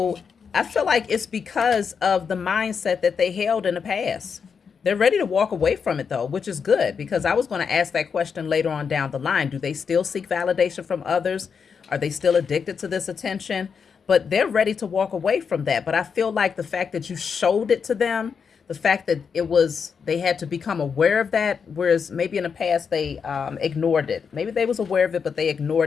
I feel like it's because of the mindset that they held in the past. They're ready to walk away from it, though, which is good, because I was going to ask that question later on down the line. Do they still seek validation from others? Are they still addicted to this attention? But they're ready to walk away from that. But I feel like the fact that you showed it to them, the fact that they had to become aware of that, whereas maybe in the past they ignored it. Maybe they was aware of it, but they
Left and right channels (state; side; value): quieter; right; 6.2 dB